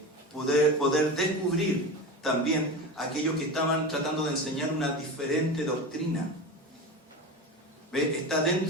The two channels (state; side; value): normal; both; correlation 0.25